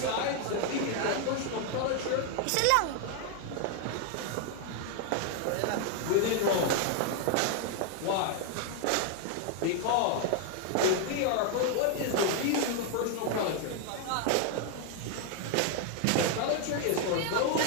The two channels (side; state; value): both; different; correlation 0.00